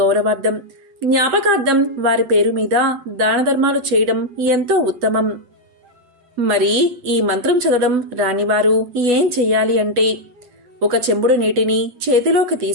జ్ఞాపకార్థం వారి పేరు మీద దాన ధర్మాలు చేయడం ఎంతో ఉత్తమం. మరి ఈ మంత్రం చదవడం రానివారు ఏం చెయ్యాలి అంటే, ఒక చెంబుడు నీటిని చేతిలోకి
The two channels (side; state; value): left; late; 8.0 ms